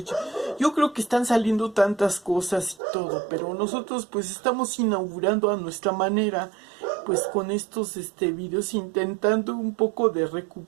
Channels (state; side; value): drops out; left; at 2.8 s